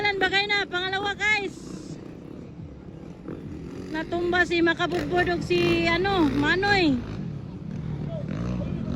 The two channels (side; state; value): both; identical; correlation 1.00